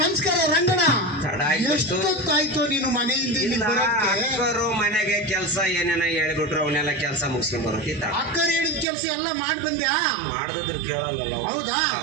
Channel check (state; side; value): drops out; left; at 8.8 s